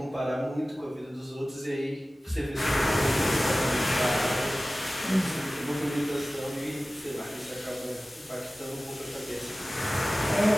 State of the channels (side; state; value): both; normal; correlation 0.97